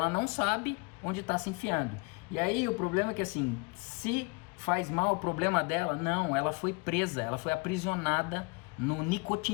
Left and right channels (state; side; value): quieter; right; 30.6 dB